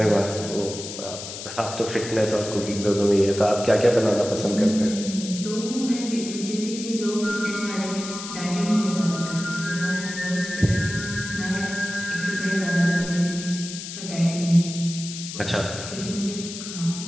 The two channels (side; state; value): left; noise; hiss, 9 dB below the sound